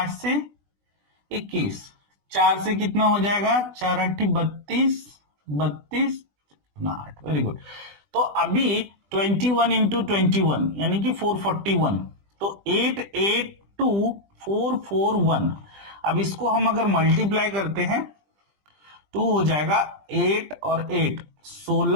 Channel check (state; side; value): late; left; 20 ms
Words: से 21, 4 से कितना हो जाएगा? 4 8 32, 32 8। Very good. तो अभी 21 इंटू 21 यानी कि 441, तो 882441। अब इसको हम अगर मल्टीप्लाई करते हैं तो हो जाएगा 8 और 8